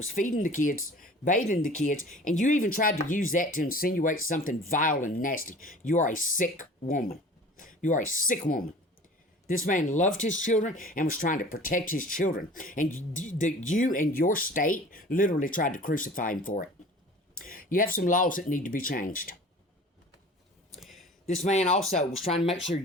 feeding the kids, bathing the kids, and you even tried to use that to insinuate something vile and nasty. You are a sick woman. You are a sick woman. This man loved his children and was trying to protect his children. And you and your state literally tried to crucify him for it. You have some laws that need to be changed. This man also was trying to make sure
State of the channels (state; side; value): normal; both; correlation 0.43